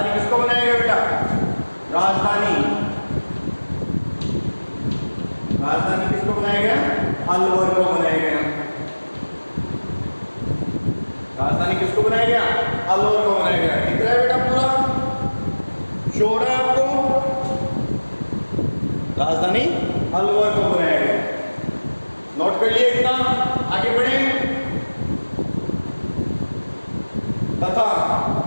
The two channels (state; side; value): inverted; both; correlation -1.00